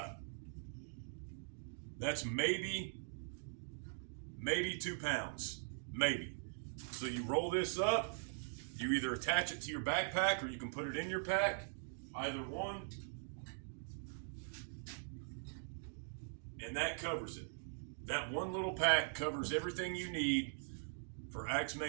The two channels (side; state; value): left; silent; digital silence